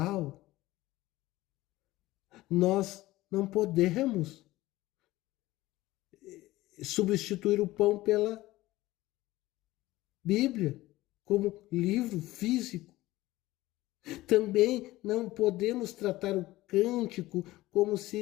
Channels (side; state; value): right; quieter; 17.6 dB